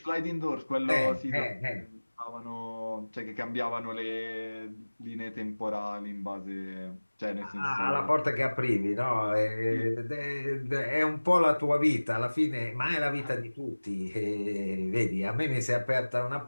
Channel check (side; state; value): both; inverted; correlation -1.00